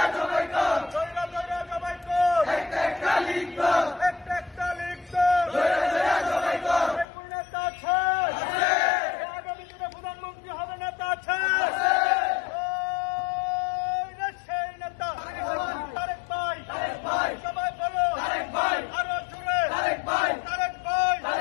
জবাই কর, একটা লীগ দল কোন নেতা আছে? আগামী দিনে প্রধানমন্ত্রী হবে নেতা আছে? সেই নেতা তারেক ভাই, সবাই বলো আরো জোরে, তারেক ভাই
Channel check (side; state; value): right; drops out; at 7.1 s